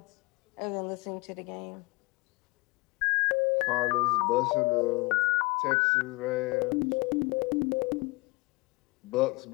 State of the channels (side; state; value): right; quieter; 25.4 dB